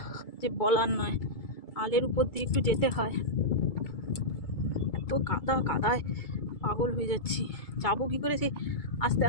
যে বলার নয়। আলের উপর দিয়ে একটু যেতে হয়, এত কাদা, কাদায় পাগল হয়ে যাচ্ছি। যাবো কি করে? সেই আস্তে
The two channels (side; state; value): right; late; 2.3 ms